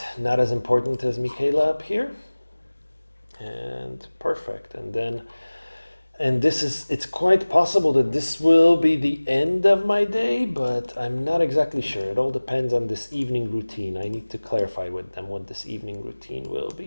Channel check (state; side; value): inverted; both; correlation -1.00